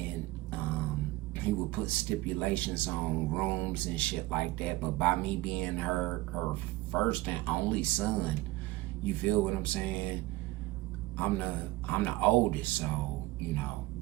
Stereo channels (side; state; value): left; quieter; 18.7 dB